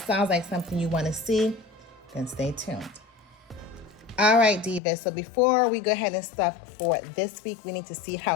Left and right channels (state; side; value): drops out; right; at 4.8 s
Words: sounds like something you wanna see, then stay tuned. All right, Divas, so before we go ahead and stuff for this week, we need to see